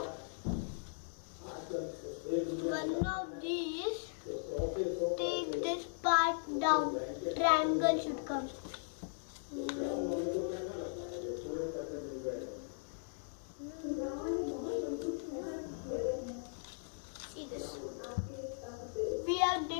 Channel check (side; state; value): right; silent; digital silence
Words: one of these, take this part down. Triangle should come. See this. We have